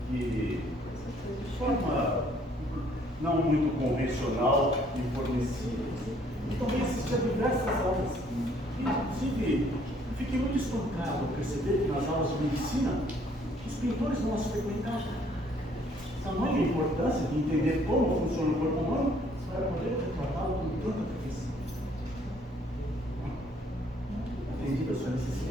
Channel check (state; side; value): normal; both; correlation 0.63